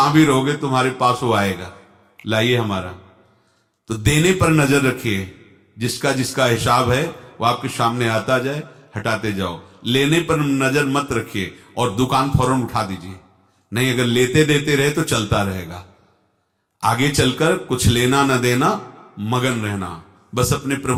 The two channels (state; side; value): identical; both; correlation 1.00